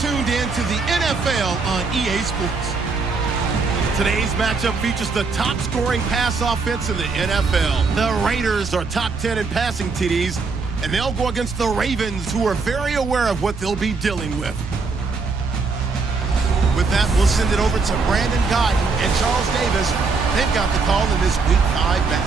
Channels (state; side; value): quieter; left; 4.4 dB